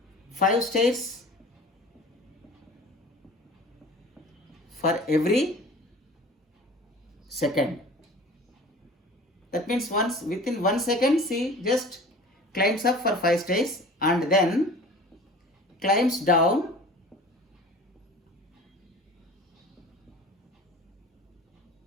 5 stairs for every second. That means once within 1 second she just climbs up for 5 stairs and then climbs down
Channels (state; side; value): normal; both; correlation 0.42